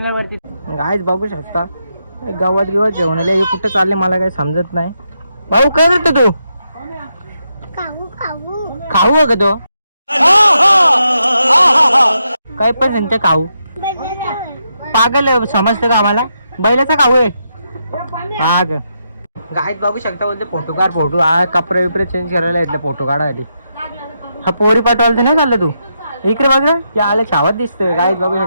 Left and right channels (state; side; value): inverted; both; correlation -0.82